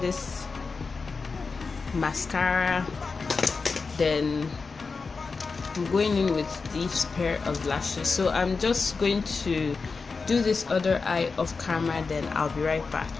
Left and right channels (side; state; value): right; quieter; 4.5 dB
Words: this mascara, then I'm going in with this pair of lashes. So I'm just going to do this other eye off camera, then I'll be right back.